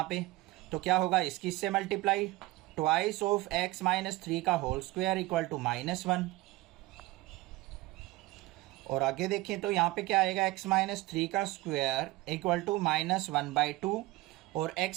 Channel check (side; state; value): left; quieter; 19.1 dB